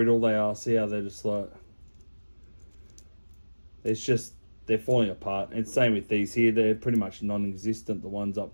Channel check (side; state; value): both; inverted; correlation -1.00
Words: they are. See how they're just like, they're falling apart. And same with these here, they're pretty much non-existent, the ones up